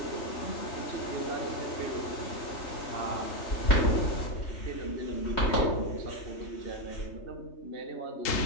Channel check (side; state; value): right; late; 3.3 ms